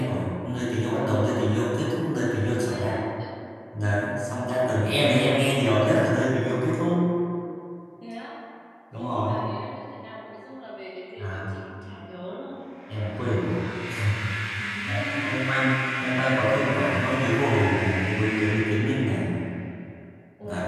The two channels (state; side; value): identical; both; correlation 1.00